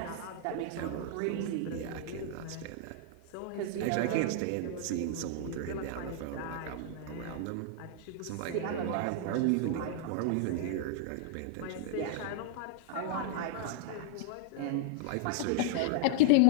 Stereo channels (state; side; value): different; both; correlation -0.01